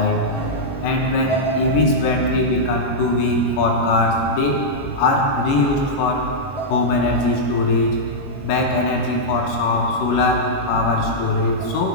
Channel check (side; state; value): right; late; 21 ms